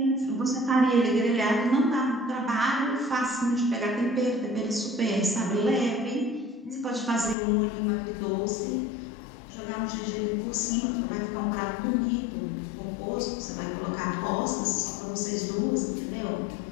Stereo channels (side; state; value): right; drops out; at 7.4 s